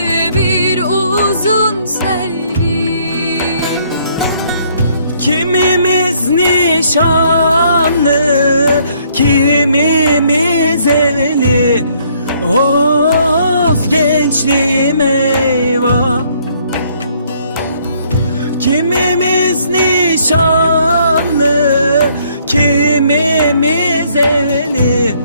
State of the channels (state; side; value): inverted; both; correlation -0.65